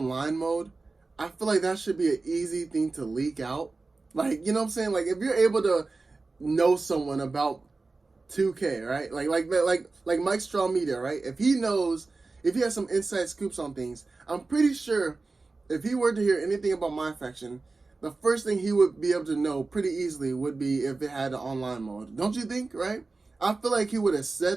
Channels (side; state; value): left; quieter; 3.7 dB